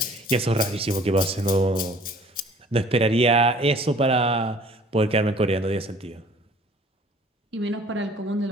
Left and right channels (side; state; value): both; normal; correlation 0.52